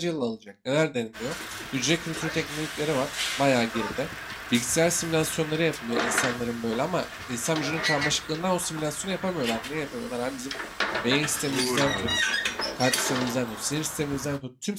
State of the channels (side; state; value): both; identical; correlation 1.00